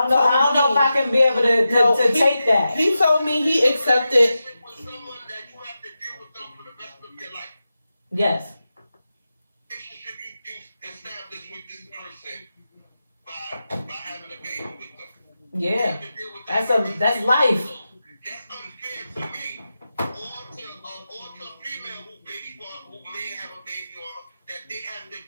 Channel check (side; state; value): both; inverted; correlation -0.91